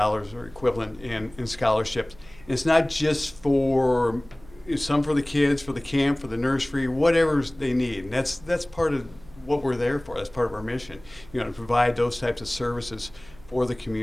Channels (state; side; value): noise; right; hum, 23 dB below the sound